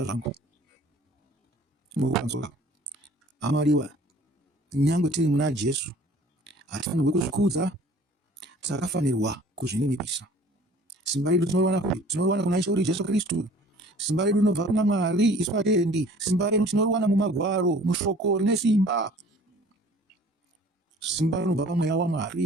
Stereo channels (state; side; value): normal; both; correlation 0.50